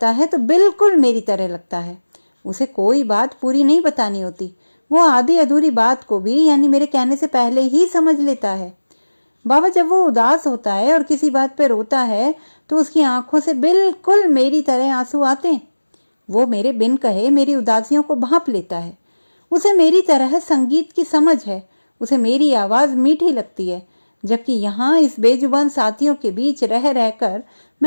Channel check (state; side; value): inverted; both; correlation -1.00